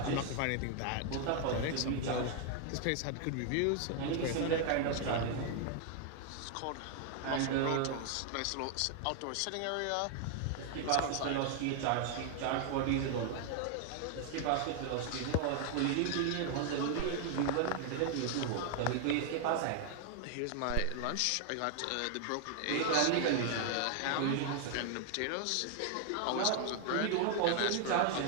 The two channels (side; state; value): both; different; correlation 0.00